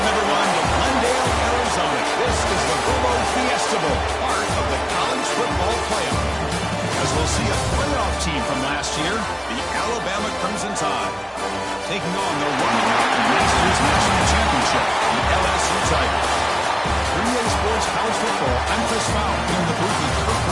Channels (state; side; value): identical; both; correlation 1.00